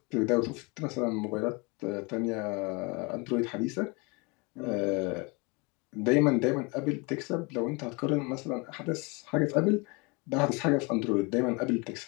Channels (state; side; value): quieter; right; 28.8 dB